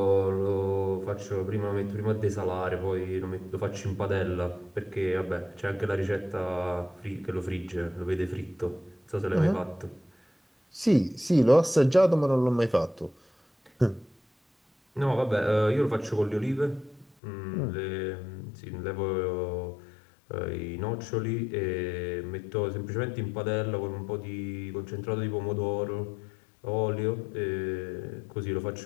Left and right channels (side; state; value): right; drops out; at 17.1 s